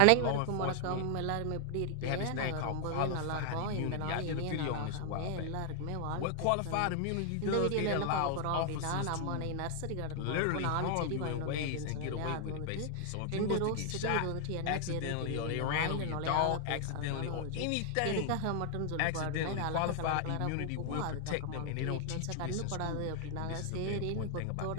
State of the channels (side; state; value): both; different; correlation 0.00